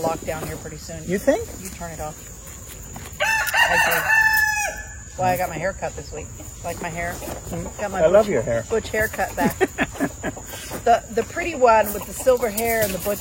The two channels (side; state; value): both; identical; correlation 1.00